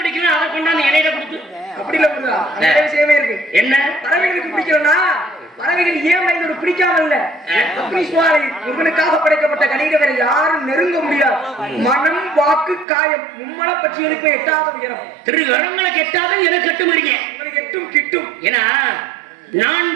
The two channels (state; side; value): drops out; left; at 12.9 s